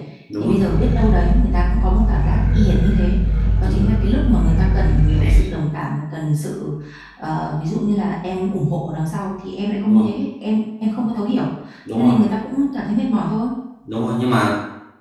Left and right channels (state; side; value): identical; both; correlation 1.00